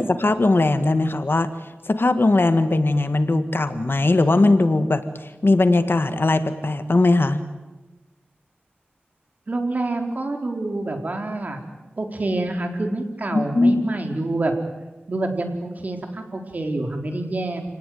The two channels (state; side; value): normal; both; correlation 0.94